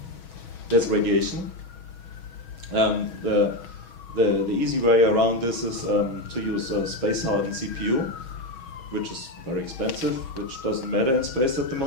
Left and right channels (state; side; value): late; right; 6.2 ms